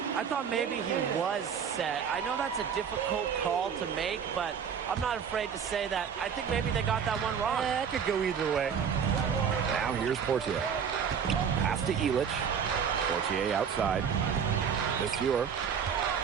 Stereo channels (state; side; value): quieter; left; 7.2 dB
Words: I thought maybe he was set. I know that's a difficult call to make, but I'm not afraid to say that. I think maybe they got that one wrong. That could go either way. Now here's Portier. Pass to Illich. Portier outside. Monsieur.